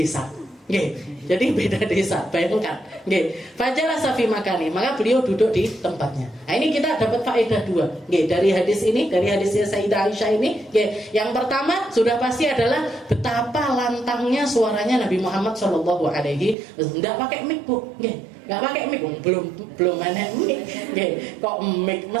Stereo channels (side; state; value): left; drops out; at 16.6 s